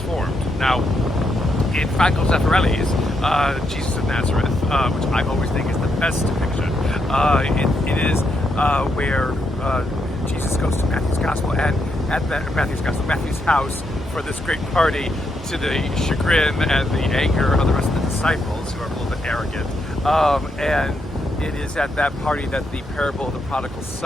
Now, in Franco Zeffirelli's Jesus of Nazareth, which I always think is the best depiction, it is where Jesus goes to Matthew's gospel, and at Matthew's house for this great party, to the chagrin and the anger of the rest of the disciples, who are a little bit arrogant. And it is at that party that the parable of the prodigal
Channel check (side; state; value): both; normal; correlation 0.80